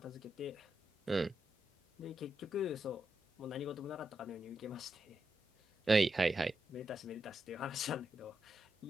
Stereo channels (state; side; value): normal; both; correlation 0.85